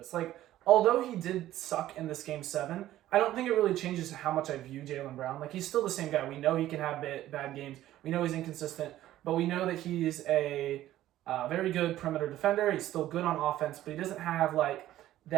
Like, although he did suck in this Game 7, I don't think it really changes how much I view Jaylen Brown. Like, he's still the same guy. We know he can have bad games. We know he's inconsistent, but we know that he's a very good perimeter defender. He's still good on offense, but he doesn't have, like,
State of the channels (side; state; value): left; quieter; 13.9 dB